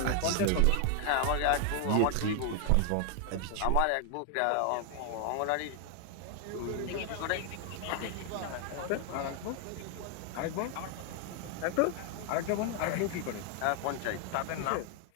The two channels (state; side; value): different; both; correlation 0.00